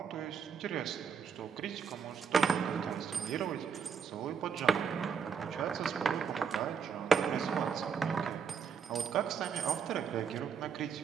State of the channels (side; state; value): left; quieter; 6.4 dB